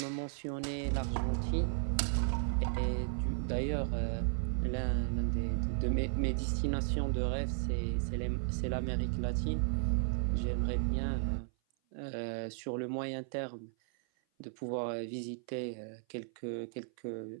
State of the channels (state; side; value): silent; left; 54 dB below the other